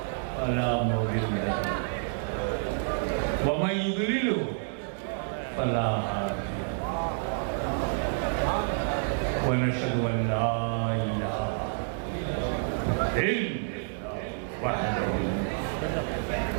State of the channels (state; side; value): silent; left; digital silence